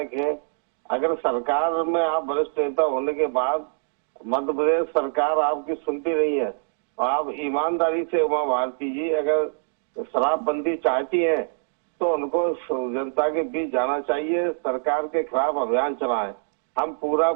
हैं। अगर सरकार में आप वरिष्ठ नेता होने के बाद मध्य प्रदेश सरकार आपकी सुनती नहीं है, तो आप ईमानदारी से उमा भारती जी अगर शराबबंदी चाहती हैं तो उनको जनता के बीच जाना चाहिए, सरकार के खिलाफ अभियान चलाएं। हम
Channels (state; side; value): silent; left; digital silence